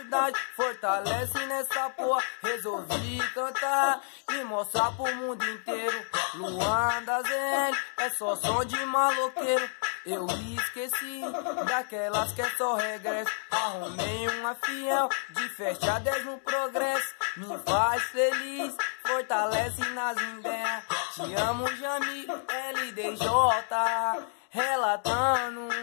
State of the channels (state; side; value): silent; right; digital silence